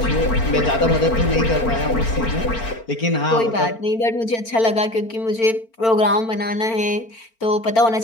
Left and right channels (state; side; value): late; right; 4.4 ms